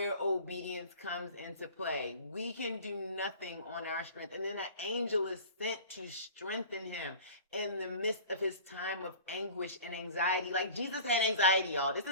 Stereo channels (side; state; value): both; inverted; correlation -0.41